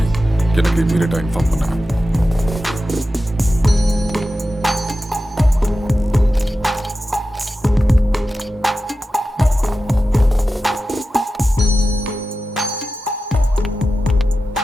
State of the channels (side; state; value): both; normal; correlation 0.93